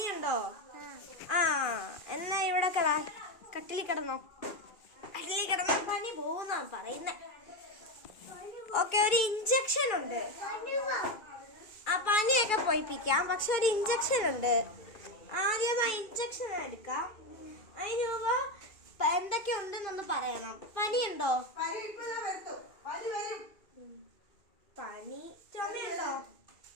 എന്നാ ഇവിടെ കട്ടിലിൽ കിടന്നോ. കട്ടിലിൽ കിടന്ന പനി പോകുന്നാണ് പറയുന്നേ. ഓക്കെ, ഒരു ഇഞ്ചക്ഷൻ ഉണ്ട്. പനിയൊക്കെ പോയിപ്പിക്കാം, പക്ഷെ ഒരു ഇഞ്ചക്ഷൻ ഉണ്ട്. ആദ്യം ആ ഇഞ്ചക്ഷൻ എടുക്കാം. അതിന് മുമ്പ് എന്തൊക്കെ ഉണ്ടെന്നൊന്ന് പറയണം. പനിയുണ്ടോ? പനി. ചുമയുണ്ടോ?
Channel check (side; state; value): right; late; 2.4 ms